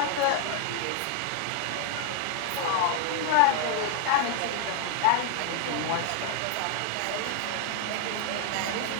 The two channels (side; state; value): both; different; correlation 0.00